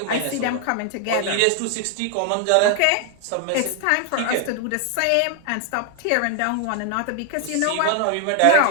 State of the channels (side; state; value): both; different; correlation 0.00